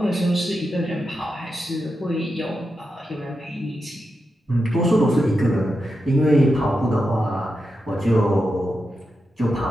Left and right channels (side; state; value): both; normal; correlation 0.88